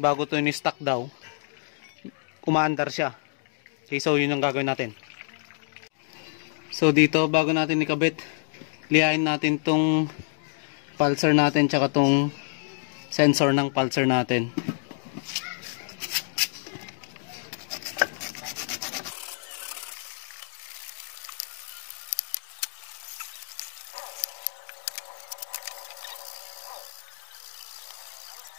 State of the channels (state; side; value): silent; right; digital silence